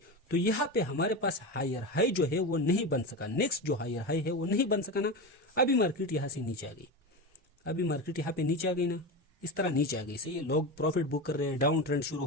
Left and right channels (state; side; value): normal; both; correlation 0.21